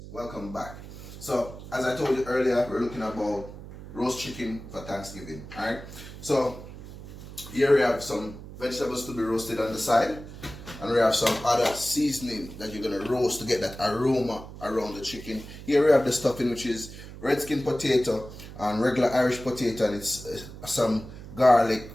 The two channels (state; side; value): noise; right; hum, 14 dB below the sound